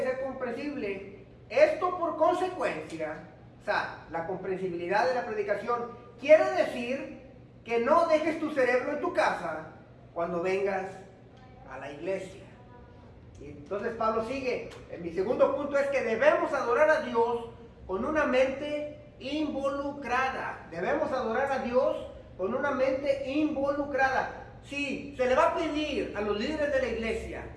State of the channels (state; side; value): identical; both; correlation 1.00